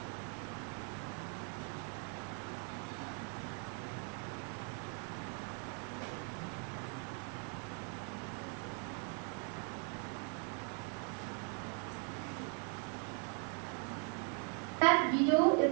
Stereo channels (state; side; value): quieter; left; 38.2 dB